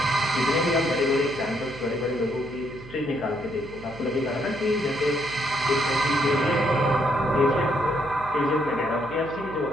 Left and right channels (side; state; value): right; noise; hum, 16 dB below the sound